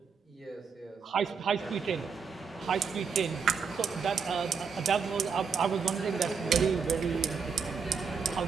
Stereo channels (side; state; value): left; quieter; 5.8 dB